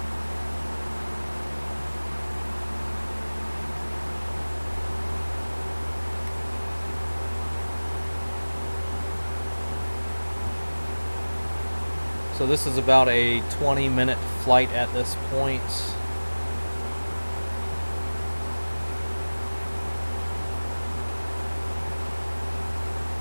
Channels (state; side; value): inverted; both; correlation -1.00